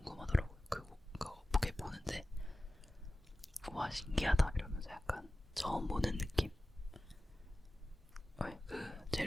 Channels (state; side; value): normal; both; correlation 0.95